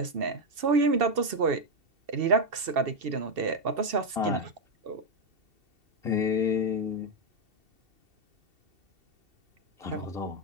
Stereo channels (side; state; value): left; late; 2.7 ms